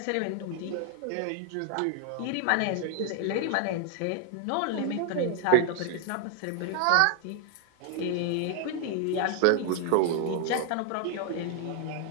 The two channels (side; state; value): both; different; correlation 0.00